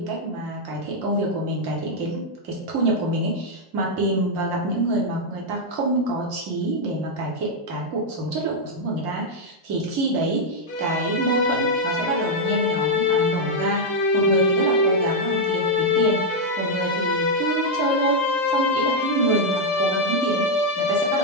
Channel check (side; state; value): both; normal; correlation -0.01